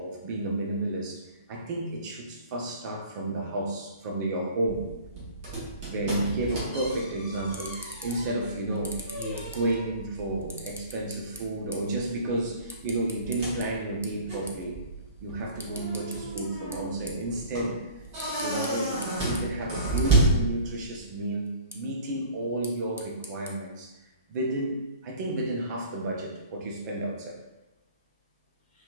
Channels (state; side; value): inverted; both; correlation -0.47